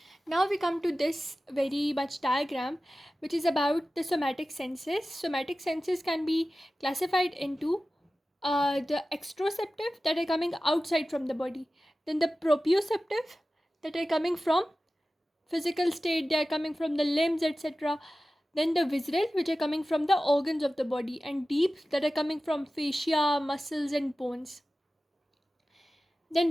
Now we come to this very much diagram, which is about the somatic senses. Somatic senses can be classified into the extroceptive, that are coming outside from the body, then the proprioceptive, that are coming from physical state, they are coming from the limbs, etc., then the visceral, which are coming from the organs of the body, and deep, that are coming from fascia, muscles, and bones.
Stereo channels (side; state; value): both; normal; correlation 0.95